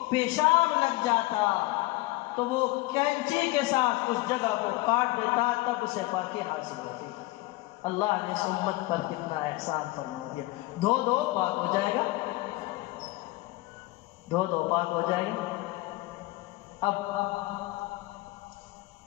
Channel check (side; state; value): right; quieter; 20.4 dB